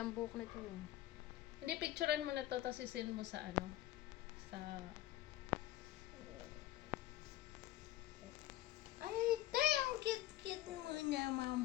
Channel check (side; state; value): right; quieter; 14.6 dB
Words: buhok na ito eh. Hindi, picturean mo na to, tapos isend mo sa sa... Ay, tay, ang cute-cute mo